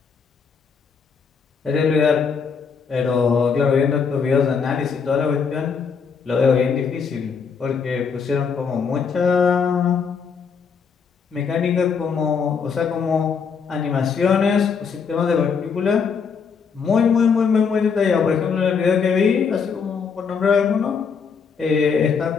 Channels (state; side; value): quieter; right; 6.0 dB